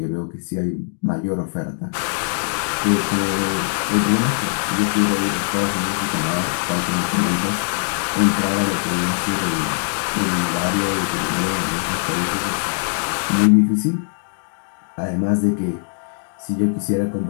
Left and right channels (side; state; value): right; silent; digital silence